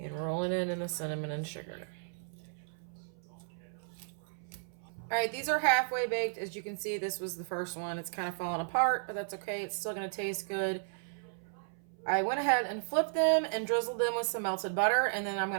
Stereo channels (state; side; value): silent; left; 55 dB below the other